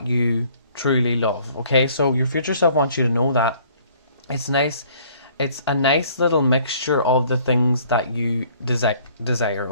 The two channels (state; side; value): inverted; both; correlation -0.57